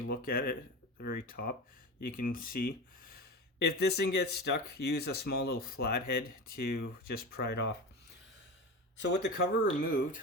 look at it at the very top, you can see. If this thing gets stuck, use a small little flathead to just pry it off. So with the cover removed,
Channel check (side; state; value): both; normal; correlation 0.26